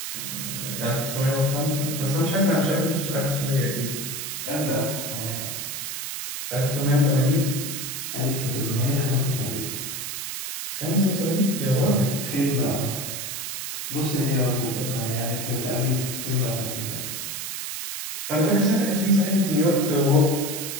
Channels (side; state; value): right; noise; hiss, 5 dB below the sound